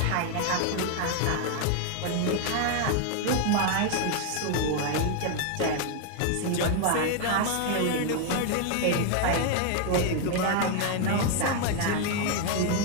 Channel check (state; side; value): different; both; correlation 0.01